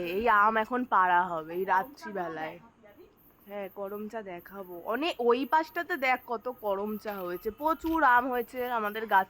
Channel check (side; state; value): both; identical; correlation 1.00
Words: এই আম এখন পাড়া হবে এই রাত্রিবেলায়। হ্যাঁ করমচা দেখাবো, অনেক ওই পাশটাতে দেখ কত করমচা হয়েছে, প্রচুর আম হয়েছে আমাদের